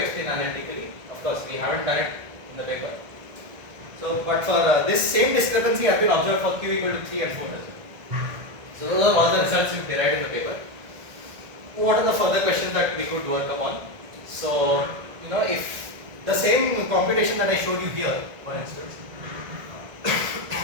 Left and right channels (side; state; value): left; late; 1.6 ms